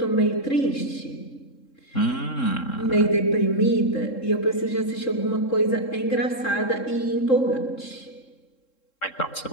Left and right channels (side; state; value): right; late; 3.7 ms